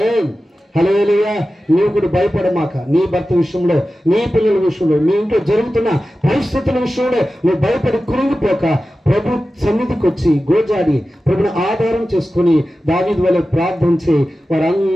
హల్లెలూయా. నీవు కూడా భయపడమాక. నీ భర్త విషయంలో, నీ పిల్లల విషయంలో, నీ ఇంట్లో జరుగుతున్న పరిస్థితుల విషయంలో నువ్వు భయపడి కృంగిపోక ప్రభు సన్నిధికి వచ్చి గోజాడి ప్రభుని ఆధారం చేసుకుని దావీదు వలె ప్రార్థించి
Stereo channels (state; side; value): normal; both; correlation 0.94